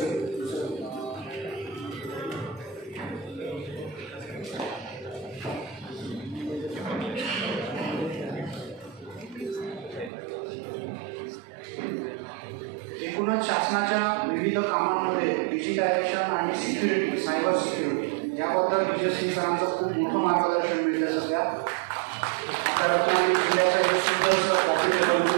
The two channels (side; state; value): left; drops out; at 10.1 s